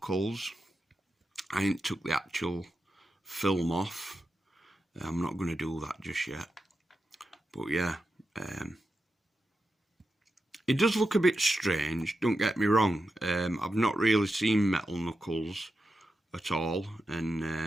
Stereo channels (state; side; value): normal; both; correlation 0.89